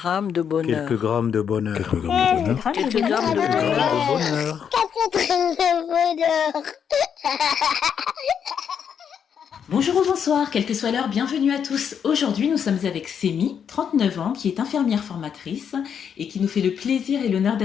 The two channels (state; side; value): quieter; right; 7.8 dB